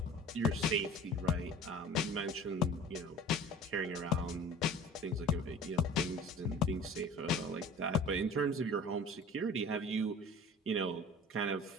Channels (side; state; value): both; normal; correlation 0.43